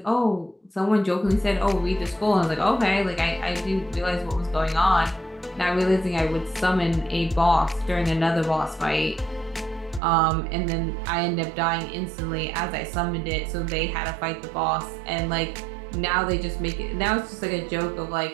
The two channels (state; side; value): drops out; left; at 10.0 s